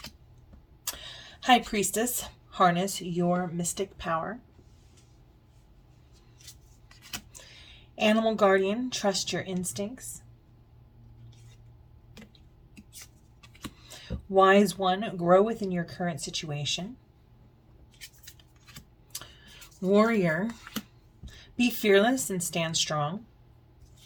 High Priestess, harness your mystic power. Animal Guardian, trust your instincts. Wise One, grow within your current situation. Warrior, be fearless and stand strong.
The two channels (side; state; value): both; identical; correlation 1.00